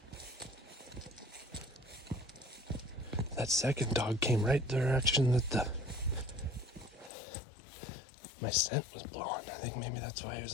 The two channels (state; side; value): drops out; right; at 7.1 s